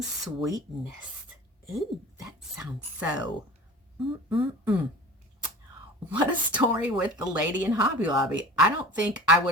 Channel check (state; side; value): normal; both; correlation 0.39